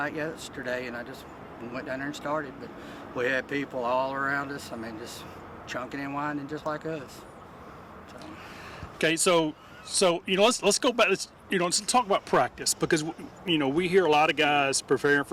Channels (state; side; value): identical; both; correlation 1.00